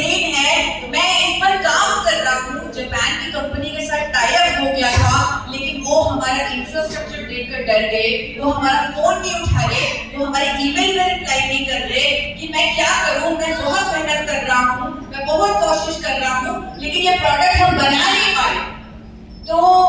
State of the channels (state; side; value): identical; both; correlation 1.00